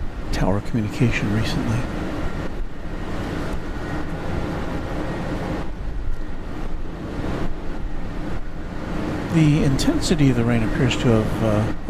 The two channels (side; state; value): both; identical; correlation 1.00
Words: tower communication recently. The intensity of the rain appears to have